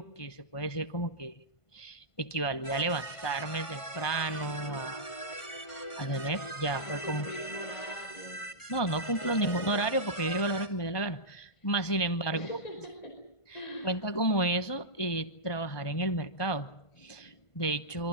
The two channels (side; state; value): right; late; 1.5 ms